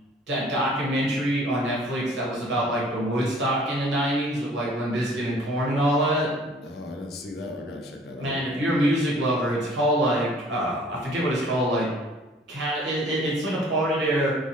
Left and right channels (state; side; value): normal; both; correlation 0.53